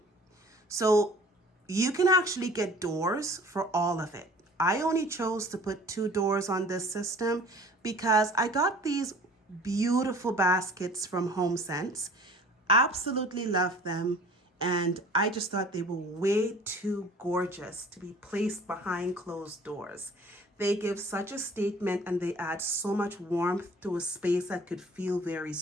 So you can actually get doors for all of it. I only chose to put 2 doors on this system because I got these beautiful baskets from HOMESENSE. Absolutely love them. And I just thought they were way too gorgeous to be placed behind closed doors. They give such a statement and they add so much warmth to a space that could feel very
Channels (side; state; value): both; normal; correlation 0.48